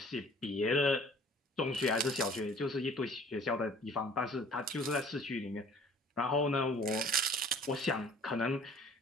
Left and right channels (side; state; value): both; normal; correlation 0.51